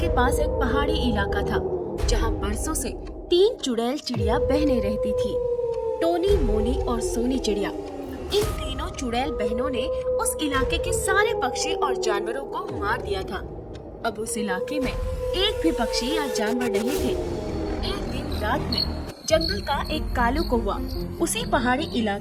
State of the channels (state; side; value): identical; both; correlation 1.00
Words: पास एक पहाड़ी इलाका था, जहाँ बरसों से तीन चुड़ैल चिड़िया बहनें रहती थी। टोनी, मोनी और सोनी चिड़िया। इन तीनों चुड़ैल बहनों ने उस इलाके के सारे पक्षी और जानवरों को मार दिया था। अब उस इलाके में एक भी पक्षी या जानवर नहीं थे। एक दिन रात में जंगल का एक कालू कौवा उसी पहाड़ी